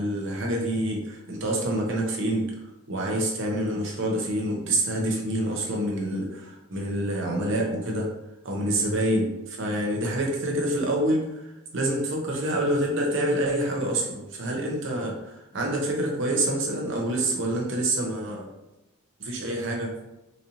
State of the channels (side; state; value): both; normal; correlation 0.37